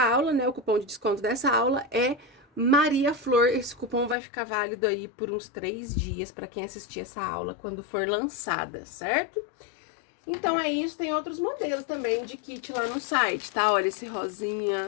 né, o cupom de desconto dessa aula é Maria Flor. Esse cupom vai ficar válido aí por uns 3 dias para quem assistir essa aula quando for lançada, certo? Então, é isso. Tem outros modelos também de kit lá no site, tá? Olha esse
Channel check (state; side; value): drops out; right; at 4.2 s